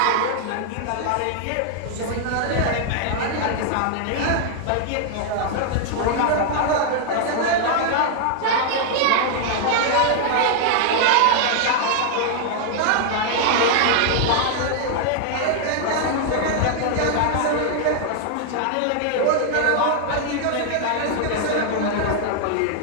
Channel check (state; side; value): different; both; correlation 0.00